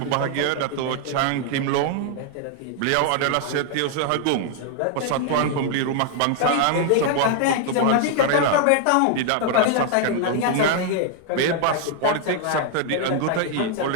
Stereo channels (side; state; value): both; different; correlation 0.00